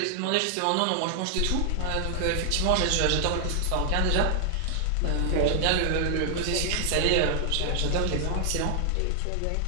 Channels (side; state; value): both; different; correlation 0.00